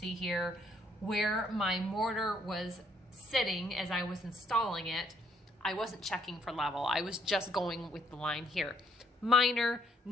here where my mortar was sitting as I was installing it. I wasn't checking for level. I was just going with the line here. Minor,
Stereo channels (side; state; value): both; normal; correlation 0.68